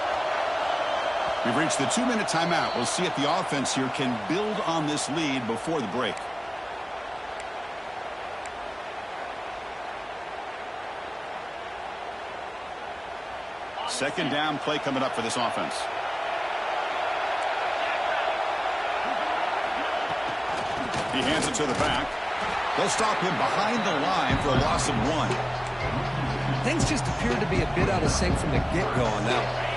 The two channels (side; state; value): both; identical; correlation 1.00